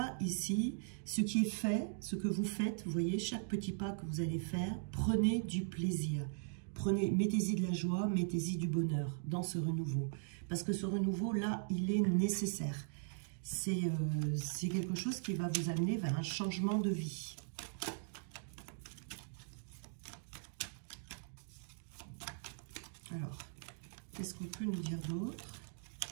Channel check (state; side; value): silent; left; digital silence